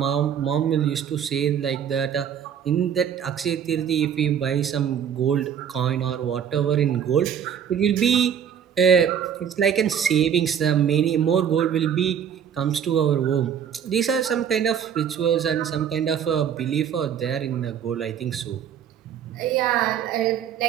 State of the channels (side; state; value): left; quieter; 8.5 dB